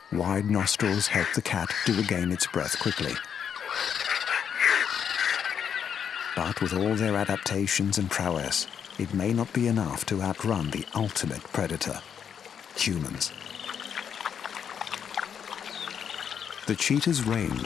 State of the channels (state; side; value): quieter; right; 7.9 dB